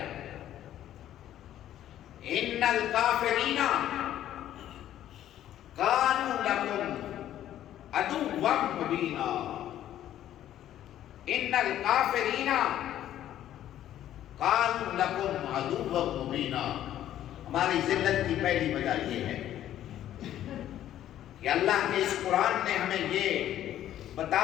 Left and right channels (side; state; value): right; quieter; 12.0 dB